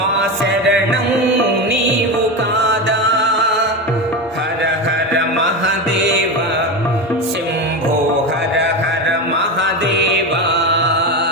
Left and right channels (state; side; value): normal; both; correlation 0.19